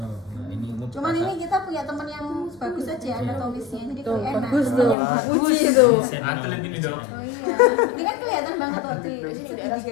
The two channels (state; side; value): drops out; right; at 5.0 s